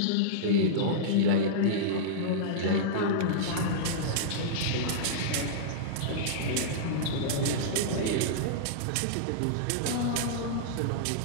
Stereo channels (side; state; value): both; different; correlation -0.03